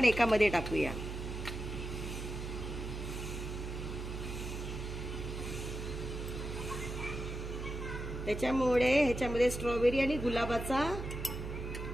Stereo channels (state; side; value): noise; right; hum, 6 dB below the sound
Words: एकामध्ये टाकूया। त्याच्यामुळे ह्याच्यामध्ये स्ट्रॉबेरी आणि गुलाबाचा